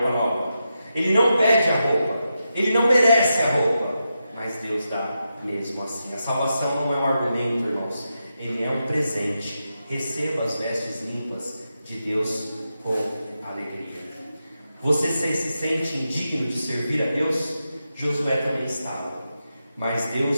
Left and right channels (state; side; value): inverted; both; correlation -0.88